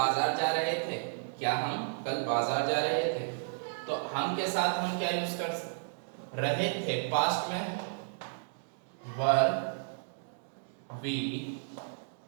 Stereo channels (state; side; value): silent; left; digital silence